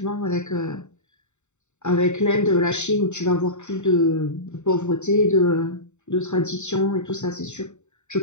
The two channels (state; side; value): late; right; 0.84 ms